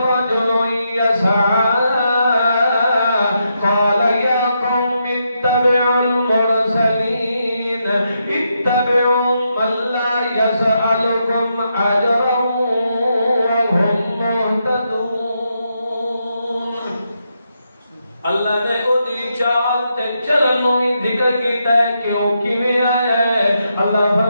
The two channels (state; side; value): inverted; both; correlation -0.82